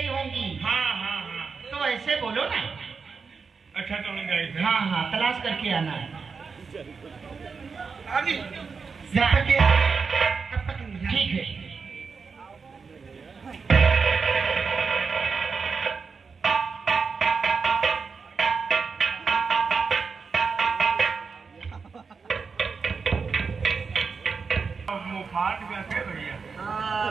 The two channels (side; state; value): left; quieter; 5.2 dB